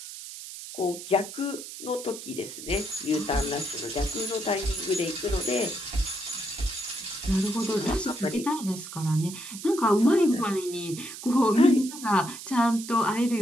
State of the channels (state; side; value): noise; right; hiss, 11 dB below the sound